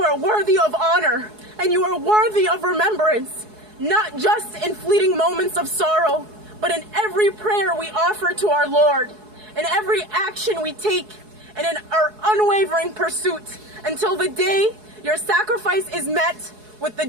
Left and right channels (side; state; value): left; late; 4.7 ms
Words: are worthy of honor, and you are worthy of remembrance, not just in fleeting moments of sorrow, but in every prayer we offer to our Lord, in every action we take, and in our unwavering pursuit until the day your sacrifice is met with the